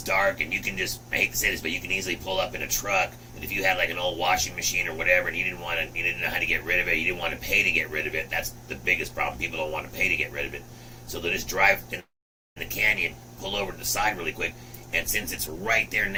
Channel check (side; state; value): both; identical; correlation 1.00